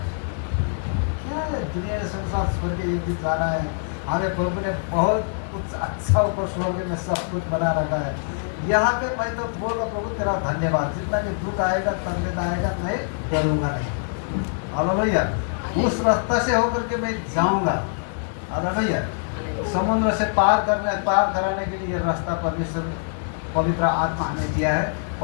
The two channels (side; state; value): right; silent; digital silence